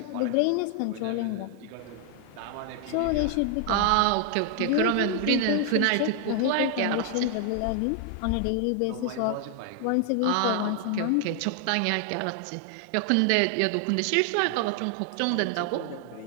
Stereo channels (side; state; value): both; different; correlation 0.00